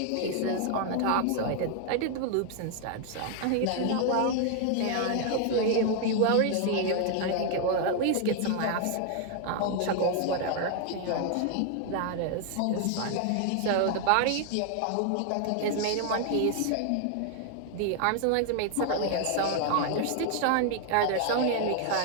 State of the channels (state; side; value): different; both; correlation 0.00